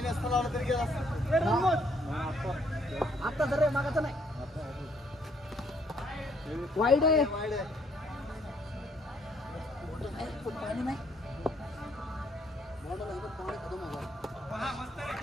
नसता लावला तरी गेला असता. आता जर मागाचा नाही वाईड आहे वाईड आहे. पाणी नाही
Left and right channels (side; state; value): both; normal; correlation 0.67